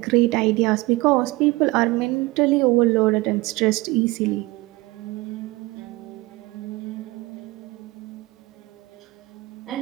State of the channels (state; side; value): quieter; left; 21.6 dB